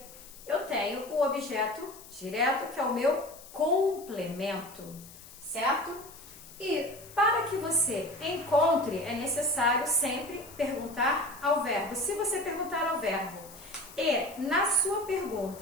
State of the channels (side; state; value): left; noise; hiss, 18 dB below the sound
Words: eu tenho o objeto direto, que é o meu complemento, certo? E para que você encontre, é necessário sempre perguntar ao verbo. Se você perguntar ao verbo e na sua